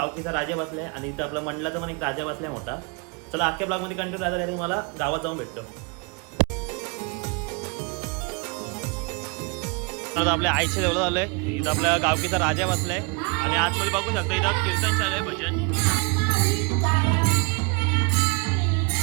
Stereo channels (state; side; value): quieter; left; 31.1 dB